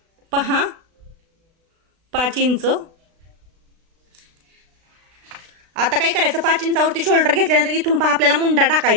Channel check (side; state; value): left; late; 36 ms